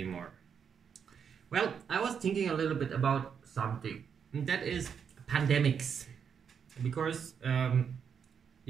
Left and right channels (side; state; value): left; quieter; 7.2 dB